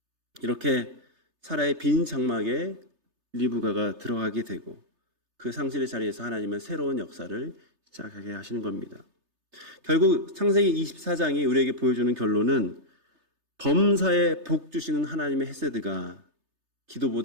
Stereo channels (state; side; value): late; left; 3.3 ms